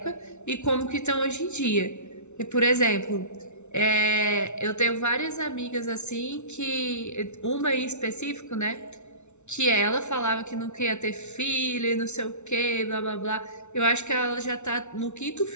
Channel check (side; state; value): right; late; 0.82 ms